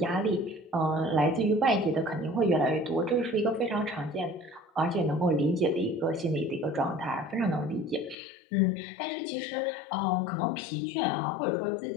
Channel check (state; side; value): drops out; right; at 8.2 s